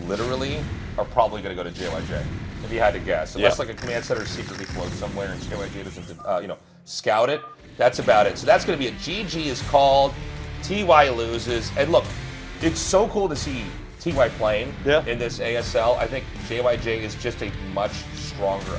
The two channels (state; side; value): identical; both; correlation 1.00